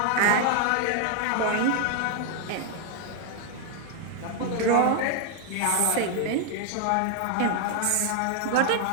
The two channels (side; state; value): both; different; correlation 0.00